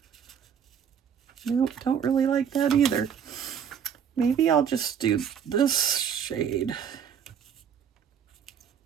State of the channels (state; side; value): quieter; left; 7.9 dB